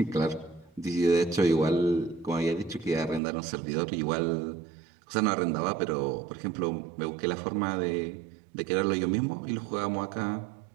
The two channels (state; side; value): drops out; left; at 3.2 s